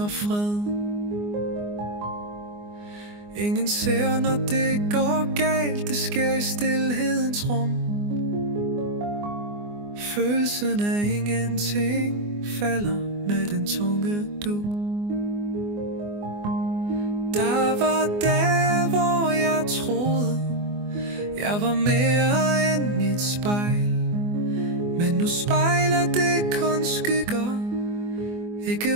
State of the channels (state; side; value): late; left; 24 ms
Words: fred. Ingen ser, når det går galt, det sker i stilhedens rum. Følelsen af ingenting falder med den tunge dug. Der var dage, hvor jeg troede, jeg var mere end mit spejl. Men nu spejler det kun skygger,